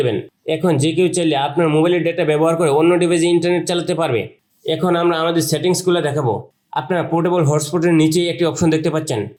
দেবেন। এখন যে কেউ চাইলে আপনার মোবাইলের ডেটা ব্যবহার করে অন্য ডিভাইসে ইন্টারনেট চালাতে পারবে। এখন আমরা আমাদের সেটিংসগুলো দেখাবো। আপনারা পোর্টেবল হটস্পটের নিচেই একটি অপশন দেখতে পাচ্ছেন,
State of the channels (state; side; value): identical; both; correlation 1.00